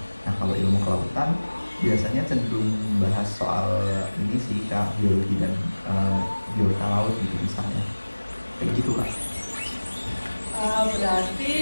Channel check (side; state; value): both; inverted; correlation -1.00